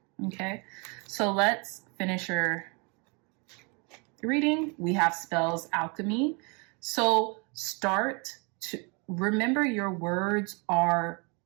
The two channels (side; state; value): left; quieter; 32.2 dB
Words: Okay, so let's finish your reading. We have spells alchemy. So start to remember your words are,